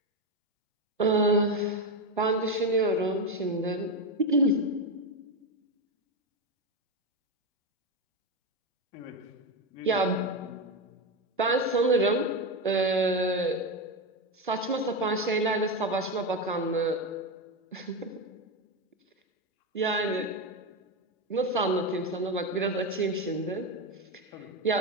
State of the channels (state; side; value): normal; both; correlation 0.12